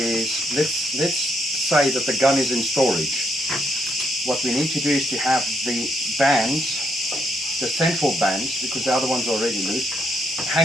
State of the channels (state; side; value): normal; both; correlation 0.75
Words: let's say that the gun is in storage. What we need to do is to have the bands, the central bands, because the other ones are already loose,